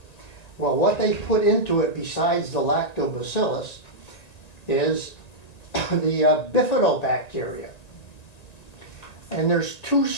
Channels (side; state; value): right; late; 1.9 ms